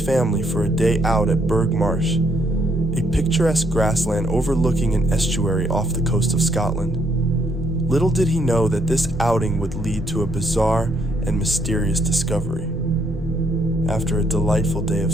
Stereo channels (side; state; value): both; normal; correlation 0.71